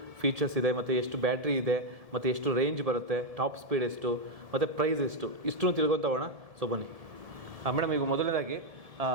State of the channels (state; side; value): late; left; 1.7 ms